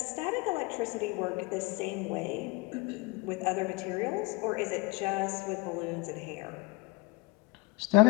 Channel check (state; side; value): quieter; right; 22.6 dB